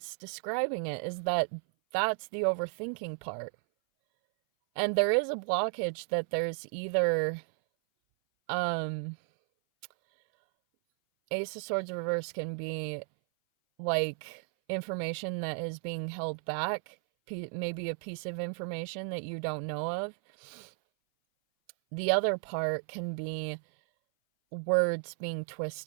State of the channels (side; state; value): left; silent; 56 dB below the other